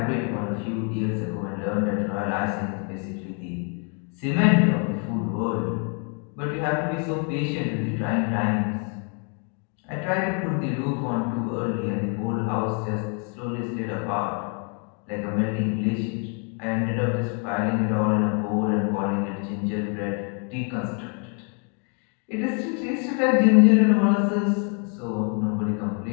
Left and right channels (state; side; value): quieter; right; 39.5 dB